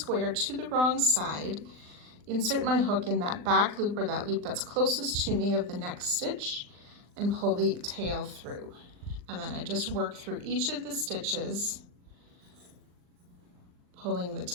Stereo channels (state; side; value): late; left; 39 ms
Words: to the wrong side, insert my hook in that back loop or that loop that's closest to me of the next stitch, and pull the tail through. And then I just work through each of the stitches, pulling the